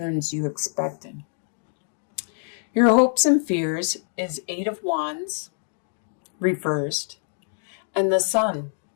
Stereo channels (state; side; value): silent; right; digital silence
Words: you expected. Your hopes and fears is Eight of Wands reversed and the Sun.